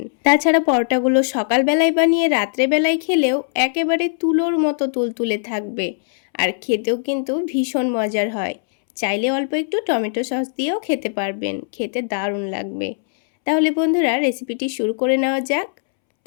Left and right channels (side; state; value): right; silent; 66 dB below the other